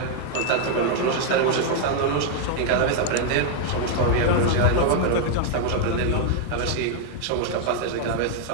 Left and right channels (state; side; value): different; both; correlation 0.00